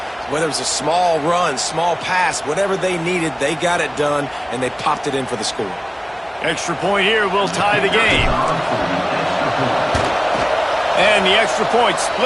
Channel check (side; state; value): both; identical; correlation 1.00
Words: Whether it was a small run, small pass, whatever they needed, they got it done, and they popped it in for the score. Extra point here will tie the game. And the extra point